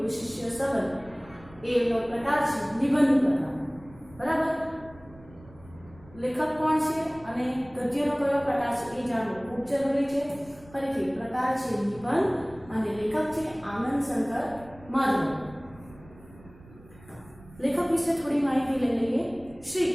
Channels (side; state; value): right; noise; rumble, 22 dB below the sound